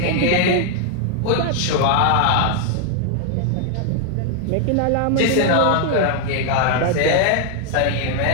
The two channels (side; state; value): both; different; correlation 0.00